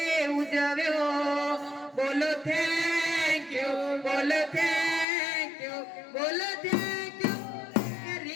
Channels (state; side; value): drops out; right; at 5.1 s